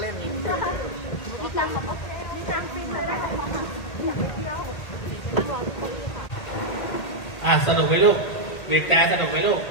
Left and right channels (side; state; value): right; late; 2.1 ms